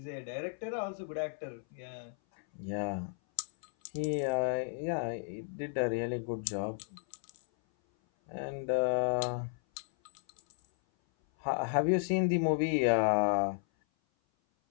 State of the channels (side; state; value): right; silent; 55 dB below the other